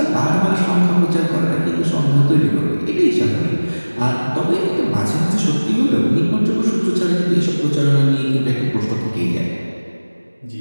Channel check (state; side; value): inverted; both; correlation -1.00